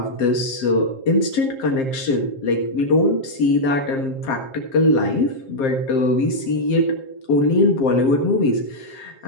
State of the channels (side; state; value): right; late; 7.5 ms